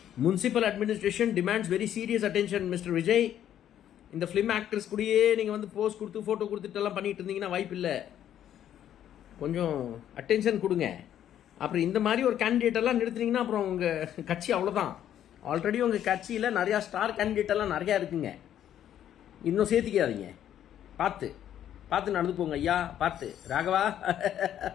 Municipal administration demands very serious attention mister Vijay. இந்த ஃபிலிம் ஆக்டர்ஸ் கூடயே நீங்கள் வந்து போஸ் கொடுத்து ஃபோட்டோ கொடுத்துட்டெல்லாம் பண்ணிகிட்டு இருந்தீங்கன்னா வாய்ப்பு இல்லை. கொஞ்சம் அட்டென்ஷன் கொடுங்க. அப்புறம் இந்த மாதிரி ஒரு கேண்டிடேட்டெல்லாம் நிறுத்துனீங்கன்னா அப்புறம் உங்கள் கட்சி அவ்வளோதான். ஆல்ரெடி உங்கள் கட்சியில் நிறையா ஸ்டார் கேண்டிடேட்டெல்லாம் நிறையா இருக்குங்க, இன்னும் சேர்த்துக்காதீங்க. பார்த்து நடந்து போங்க ஐயா, பார்த்து ராகவா.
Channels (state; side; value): quieter; right; 10.7 dB